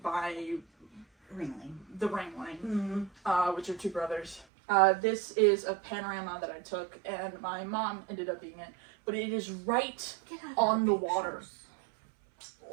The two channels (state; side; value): drops out; left; at 4.5 s